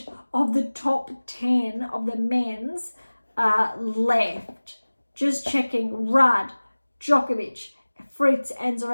of the top 10 of the men's left. Just checking. Rudd, Djokovic, Fritz, and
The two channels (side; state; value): both; inverted; correlation -1.00